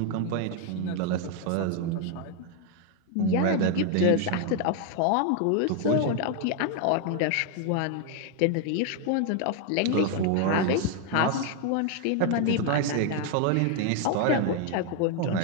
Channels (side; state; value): both; different; correlation 0.01